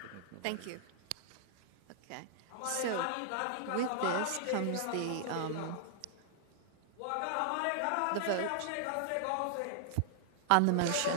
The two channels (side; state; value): both; different; correlation -0.01